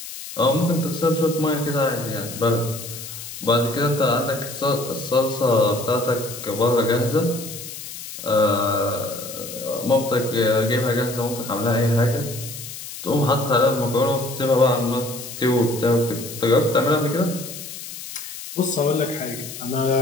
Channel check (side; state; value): left; noise; hiss, 11 dB below the sound